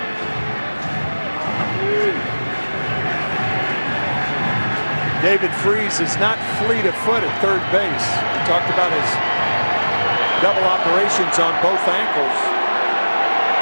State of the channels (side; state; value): both; inverted; correlation -1.00